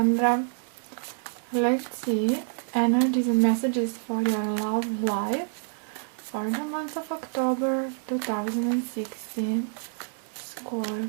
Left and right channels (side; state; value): left; silent; 60 dB below the other